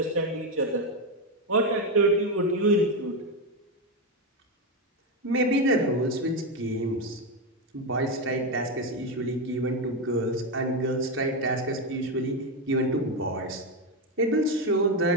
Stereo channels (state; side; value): normal; both; correlation 0.09